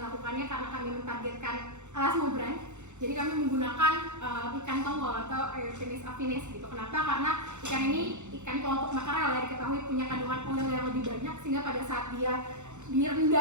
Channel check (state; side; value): late; left; 0.84 ms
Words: karena kami mentargetkan elasmobranch. Jadi kami menggunakan ikan tongkol atau Eothenis affinis gitu. Kenapa? Karena ikan ini ikan kelompok makarel ya, diketahui punya kandungan oil yang lebih banyak, sehingga pada saat dia